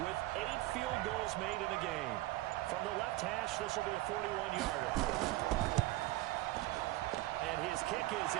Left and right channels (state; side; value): quieter; left; 17.9 dB